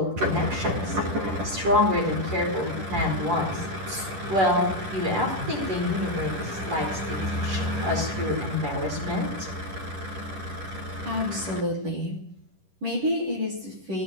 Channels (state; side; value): late; left; 10 ms